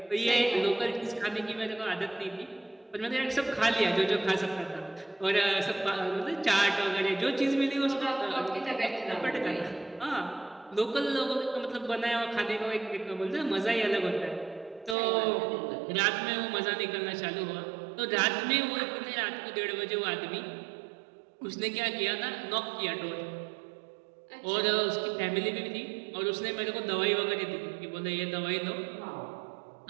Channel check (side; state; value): left; drops out; at 15.0 s